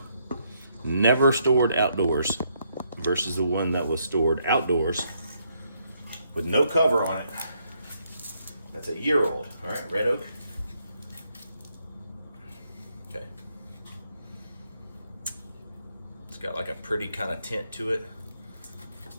never stored outdoors, versus the one that was stored outdoors with no cover on it. That's a year old. All right, red oak. Okay. It's got like a pretty kind of tint to it.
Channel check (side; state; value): both; inverted; correlation -0.74